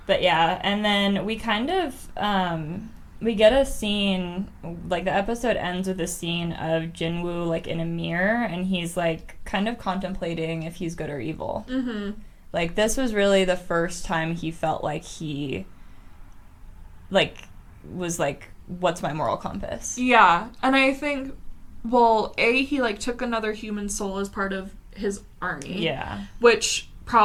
But yeah, and then we kind of we get a scene, like the episode ends with a scene of Jinwoo like in a mirror, and he's like kind of contemplating if he's good or evil. Mm-hmm. Like this was really the first time he felt like he like was like, what's my moral compass? Yeah, and I think, well, he like took another human soul as part of his army. Yeah. Which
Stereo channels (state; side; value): identical; both; correlation 1.00